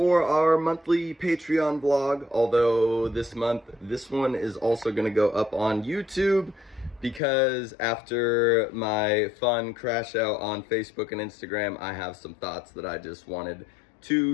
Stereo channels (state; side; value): drops out; right; at 7.2 s